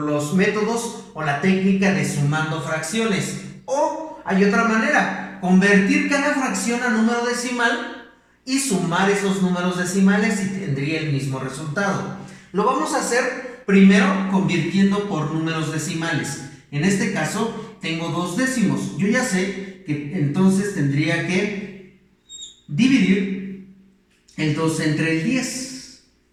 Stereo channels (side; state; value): both; identical; correlation 1.00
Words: métodos o la técnica de sumando fracciones. O hay otra manera, convertir cada fracción a número decimal y sumar esos números decimales y tendría el mismo resultado. Lo vamos a hacer primero convirtiendo por números decimales. En este caso tengo 2 décimos. Yo ya sé que entonces tendría que dividir el 2 entre el 10,